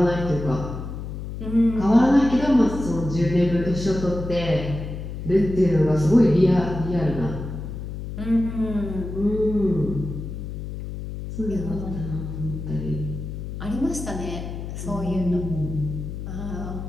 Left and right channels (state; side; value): noise; left; hum, 7 dB below the sound